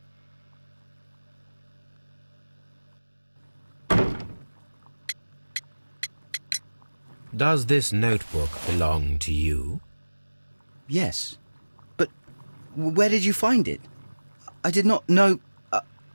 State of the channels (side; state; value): both; inverted; correlation -1.00